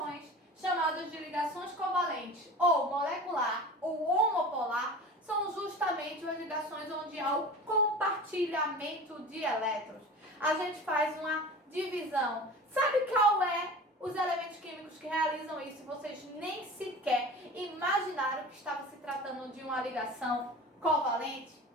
chamadas de ligações covalentes, ou molecular, ou homopolar, são justamente as ligações onde há o compartilhamento de elétrons. A gente faz uma divisão. Sabe qual é os elementos químicos que realizam isso? Vocês nem sequer imaginaram que estava se tratando de uma ligação covalente?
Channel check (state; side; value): normal; both; correlation 0.36